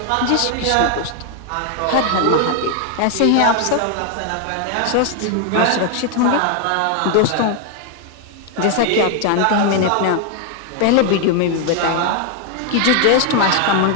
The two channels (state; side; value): different; both; correlation 0.00